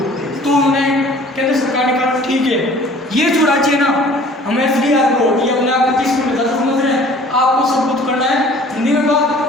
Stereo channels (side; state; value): both; normal; correlation 0.50